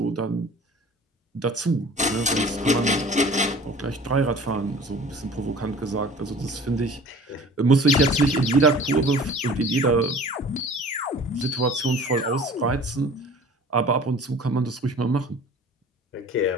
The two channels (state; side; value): normal; both; correlation 0.45